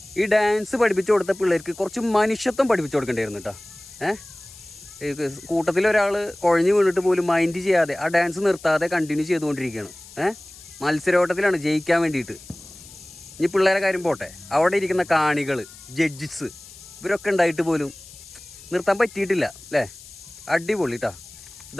ഈ ഡാൻസ് പഠിപ്പിച്ചു കൊടുത്ത പിള്ളേർക്ക് കുറച്ച് മനുഷ്യത്വം പഠിപ്പിച്ചു കൊടുക്കേണ്ടിയിരുന്നു കേട്ടോ. കൂട്ടത്തിൽ ഒരാൾ കുഴഞ്ഞു വീണിട്ട് പോലും മൈൻഡ് ചെയ്യാതെ ആ ഡാൻസ് നിർത്താതെ കണ്ടിന്യൂ ചെയ്തുകൊണ്ടിരിക്കുകയാണ്. മത്സരോട്ടത്തിലാണ് ജയിക്കാൻ വേണ്ടിയിട്ട്. ഇനി പിള്ളേരെ കാര്യം പോട്ടെ, അവിടെ ഇരിക്കുന്ന കാണികൾ, ജഡ്ജസ്, ഇവരൊക്കെ ഉണ്ടായിട്ട് പോലും നിർത്താൻ പറ്റിയിട്ടില്ല അല്ലേ? അടിപൊളി കേട്ടോ.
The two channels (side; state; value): left; noise; hiss, 19 dB below the sound